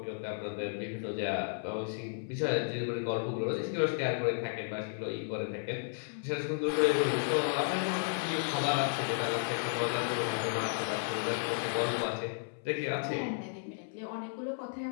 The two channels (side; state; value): right; silent; 55 dB below the other